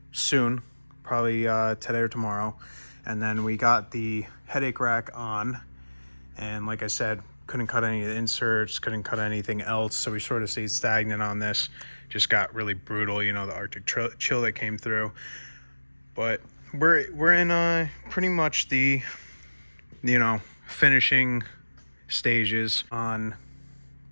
soon, probably today or tomorrow. And then we got the headache rack on, and like I said, couldn't cut any of the inserts, couldn't cut anything else, so we sort of stayed stagnant on this. Just got really brutal, you know, the Arctic chill that came through. But we're in pretty much the, you know, finishing stages. On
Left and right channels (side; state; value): both; inverted; correlation -1.00